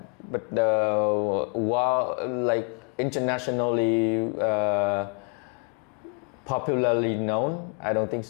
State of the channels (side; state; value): right; quieter; 38.3 dB